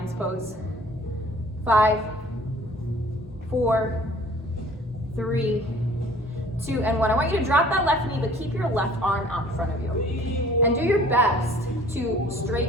pose. 5, 4, 3, 2, and 1. I want you to drop that left knee, but keep your left arm out in front of you. And do your best to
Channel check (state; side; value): normal; both; correlation 0.52